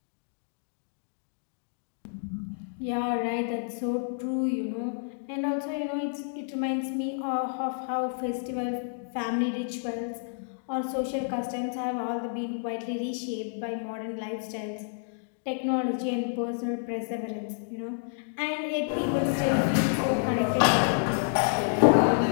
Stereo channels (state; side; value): silent; right; digital silence